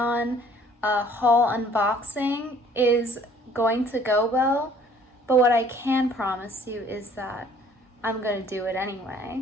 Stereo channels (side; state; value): both; normal; correlation 0.56